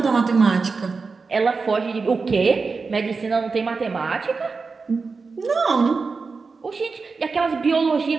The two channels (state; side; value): quieter; left; 4.5 dB